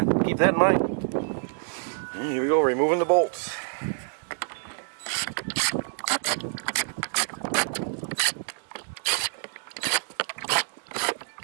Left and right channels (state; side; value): silent; left; digital silence